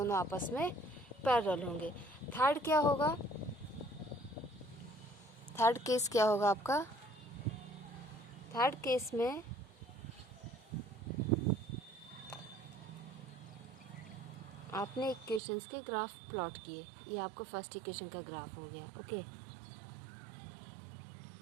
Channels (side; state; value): left; drops out; at 15.4 s